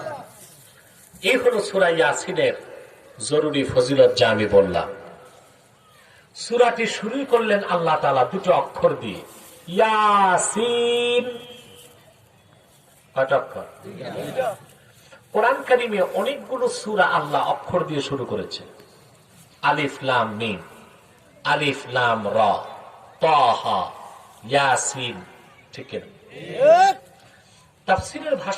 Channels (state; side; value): identical; both; correlation 1.00